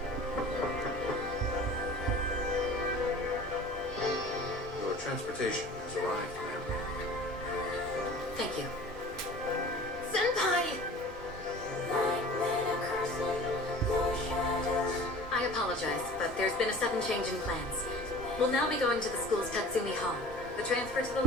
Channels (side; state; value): both; normal; correlation 0.42